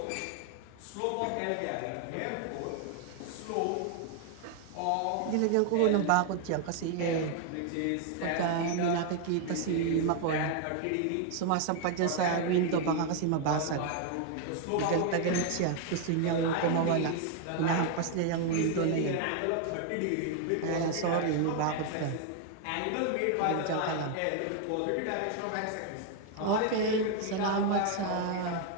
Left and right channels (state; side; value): different; both; correlation 0.00